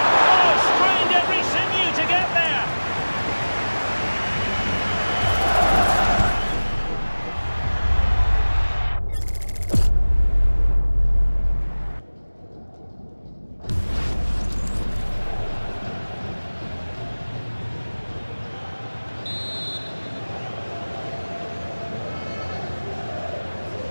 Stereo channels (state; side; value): inverted; both; correlation -1.00